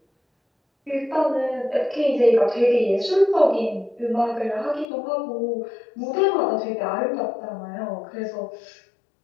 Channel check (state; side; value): drops out; right; at 4.9 s